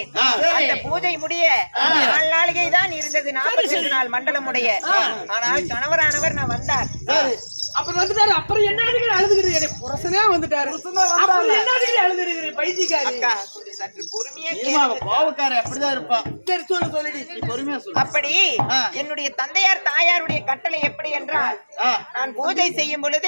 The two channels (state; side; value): inverted; both; correlation -1.00